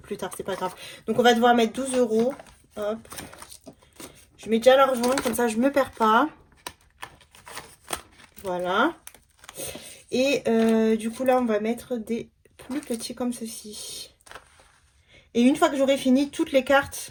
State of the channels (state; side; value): identical; both; correlation 1.00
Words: plus tard, c'est pas grave. Donc on va devoir mettre 12 euros. Hop. Je mets déjà l'argent, comme ça je me perds pas. Voilà. Et du coup là on va mettre des plus petits comme ceci. Et une fois que j'aurai fini toutes les